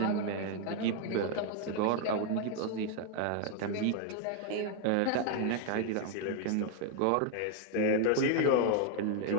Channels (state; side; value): different; both; correlation 0.00